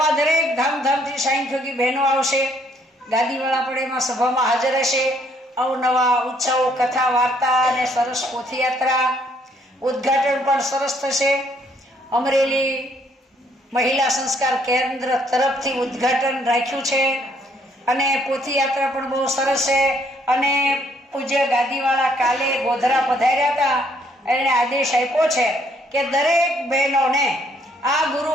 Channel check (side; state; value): both; normal; correlation 0.67